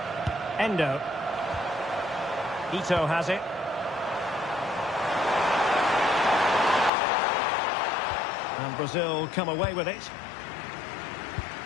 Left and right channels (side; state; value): right; drops out; at 6.9 s